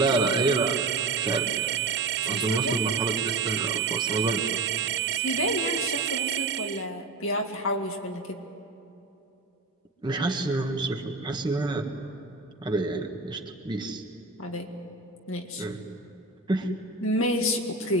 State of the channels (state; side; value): quieter; left; 3.5 dB